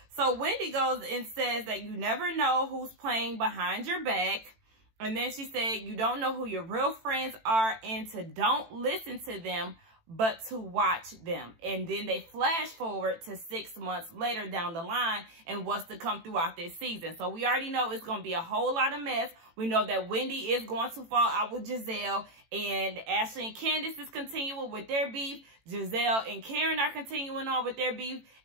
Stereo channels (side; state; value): left; late; 18 ms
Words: So Wendy goes and says that you never know who's playing behind your back. And then she said you don't know who your real friends are and to don't listen to them, but to watch them. And then they flash forward to 6 months later down the line and what's to come throughout this season. So we already know it's going to be a whole lot of mess. We know that Wendy is going to fall out with Giselle, and Ashley and Candace is continuing with their beef. Giselle and Karen are continuing on with their beef.